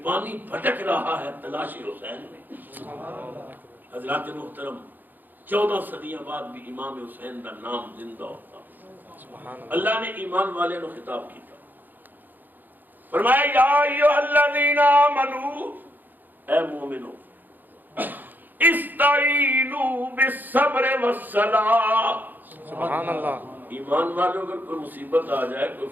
پانی بھٹک رہا ہے تلاشی حسین میں۔ حضرات محترم 14 صدیاں بعد بھی امام حسین کا نام زندہ ہوتا۔ اللہ نے ایمان والے نو خطاب کیتا، فرمایا یا ایھا الذین آمنو، اے مومنو استعینوا بالصبر والصلاۃ۔ سبحان اللہ ایمان والوں اگر کوئی مصیبت آ جائے، کوئی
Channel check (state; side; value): late; left; 0.087 ms